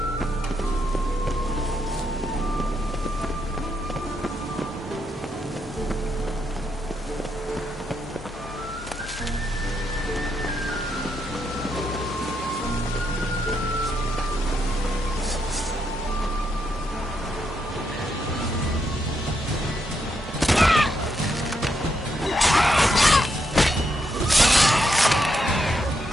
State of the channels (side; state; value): both; normal; correlation 0.80